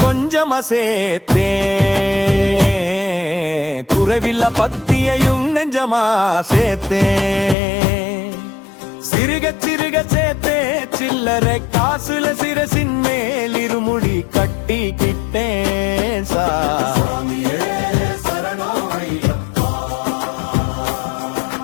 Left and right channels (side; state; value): right; drops out; at 7.6 s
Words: கொஞ்சமா சேர்த்தேன், குறைவில்ல பத்தியையும் நெஞ்சமா சேர்த்தேன். சிறுக சிறுக சேர்த்தே சில்லறை காசுல சிரசின் மேல் இருமுடி கட்டிக்கிட்டேன் சாமி.